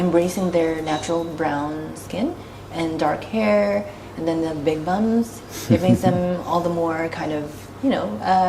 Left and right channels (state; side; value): identical; both; correlation 1.00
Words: their natural brown skin and dark hair, and then the big bums, it makes them all the more kind of, you know,